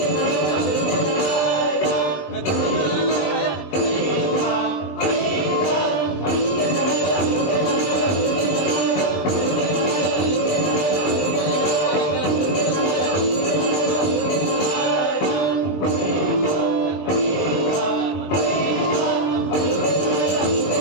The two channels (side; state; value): right; late; 20 ms